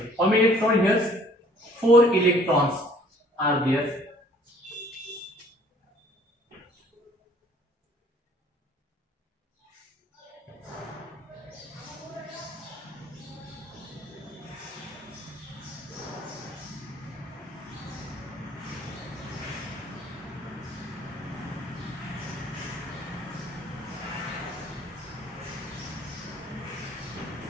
How many electrons here? 4 electrons are there.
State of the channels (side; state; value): both; normal; correlation 0.57